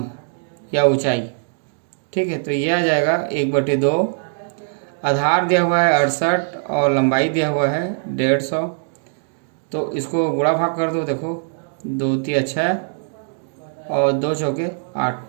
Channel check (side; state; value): left; silent; digital silence